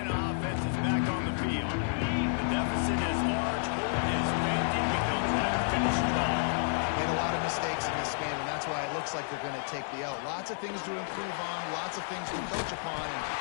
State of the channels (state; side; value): silent; right; digital silence